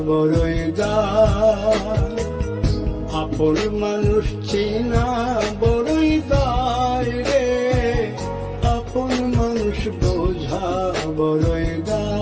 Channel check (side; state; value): both; identical; correlation 1.00